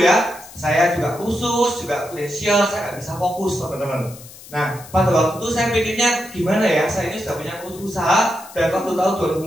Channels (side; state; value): left; noise; hiss, 18 dB below the sound